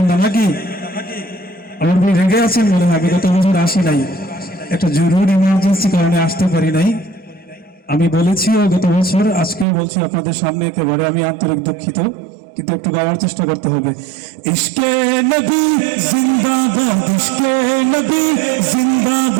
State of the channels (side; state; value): left; drops out; at 9.7 s